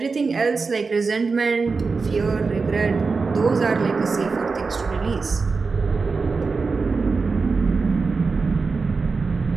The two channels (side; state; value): left; quieter; 4.5 dB